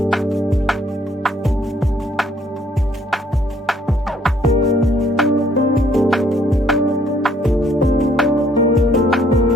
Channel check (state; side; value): normal; both; correlation 0.65